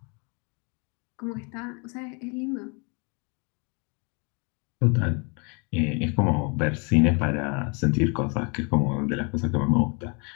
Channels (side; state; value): right; quieter; 33.8 dB